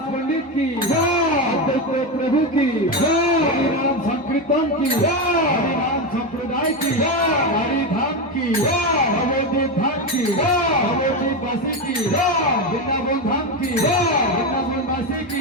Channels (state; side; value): normal; both; correlation 0.13